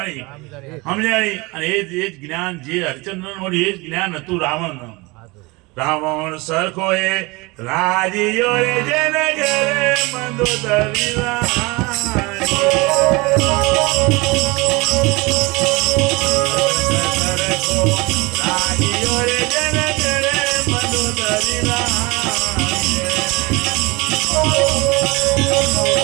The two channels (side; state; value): left; quieter; 24.8 dB